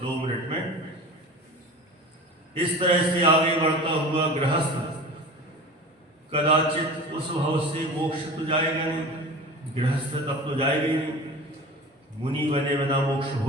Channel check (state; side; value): normal; both; correlation 0.35